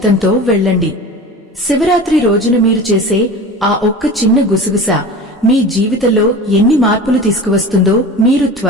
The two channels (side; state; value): both; normal; correlation 0.35